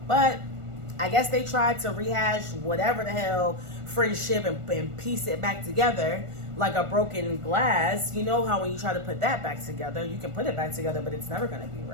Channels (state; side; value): late; left; 1.4 ms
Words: But I guess they tried to rehash whatever the hell friendship and piece it back together like a broken glass. You know how when you try to put that back together, you can put it back together, but it's never going to be